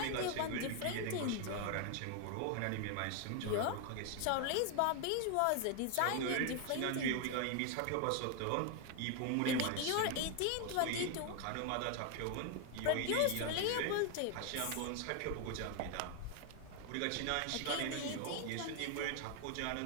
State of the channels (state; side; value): different; both; correlation 0.01